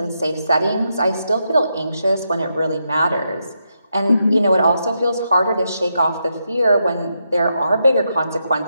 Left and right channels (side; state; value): both; inverted; correlation -0.83